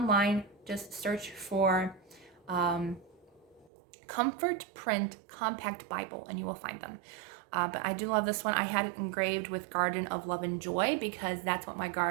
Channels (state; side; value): drops out; left; at 3.7 s